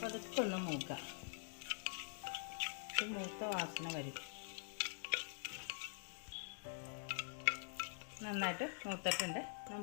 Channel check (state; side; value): silent; right; digital silence